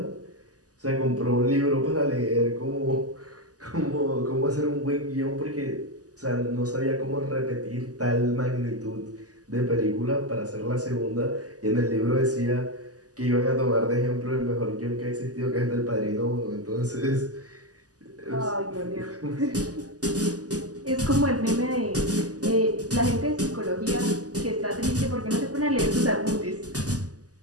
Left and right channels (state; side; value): late; left; 0.67 ms